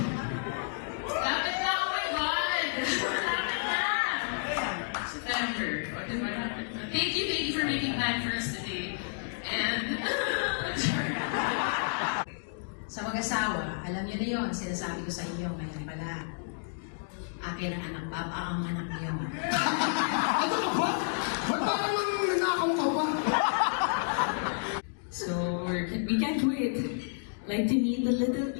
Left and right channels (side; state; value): right; silent; digital silence